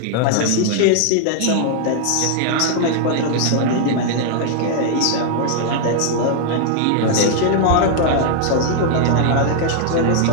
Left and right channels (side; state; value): both; different; correlation 0.00